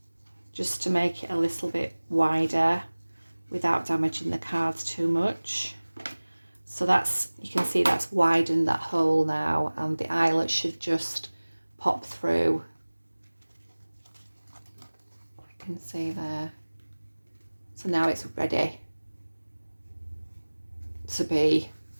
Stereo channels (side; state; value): both; inverted; correlation -1.00